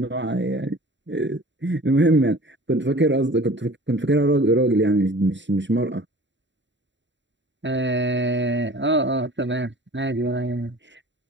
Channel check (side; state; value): left; late; 0.53 ms